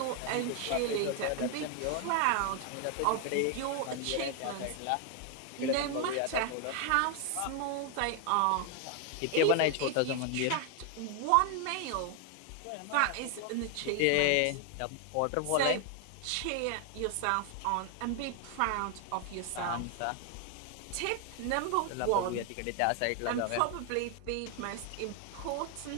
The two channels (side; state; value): both; different; correlation 0.00